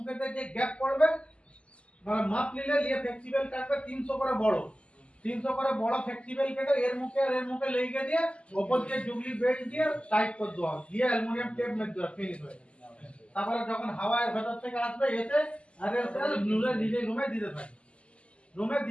যে গ্যাপ পড়বে মানে মাপ নিলে নিয়ে ফ্লেক্সিবল কাটবে 300 করে বড়, 300 করে বড় ফ্লেক্সিবল কেটে এর মুখে আর এর মুখে লেগে দিয়ে উপর দিয়ে জুগলি বেল্ট দিয়ে টাইট করে দেওয়া, দিয়ে অ্যালুমিনিয়াম টেপ মেরে দেওয়া, ফিনিশ হয়ে যাবে। তারপরে যখন হাওয়ার ভেতর থেকে আসবে এসে আর এসে নিজে রুমে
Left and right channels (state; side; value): late; right; 0.056 ms